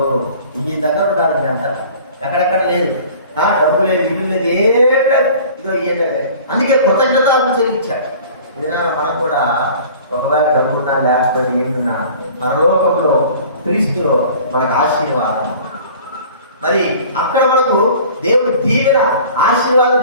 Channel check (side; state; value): both; inverted; correlation -0.46